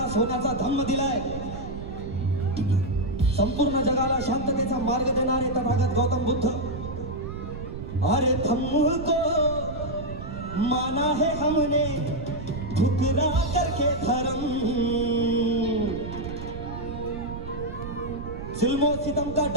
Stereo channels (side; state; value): right; noise; rumble, 9 dB below the sound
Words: सोन्याचा धम्म दिलाय, संपूर्ण जगाला शांततेचा मार्ग देणारे तथागत गौतम बुद्ध। अरे धम्म को माना है हमने ठुकरा करके धर्म, जुल्मो सितम का